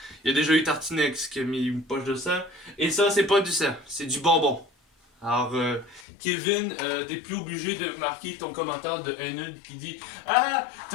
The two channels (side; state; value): right; drops out; at 6.1 s